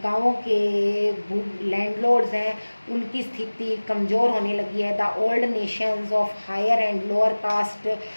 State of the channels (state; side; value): inverted; both; correlation -1.00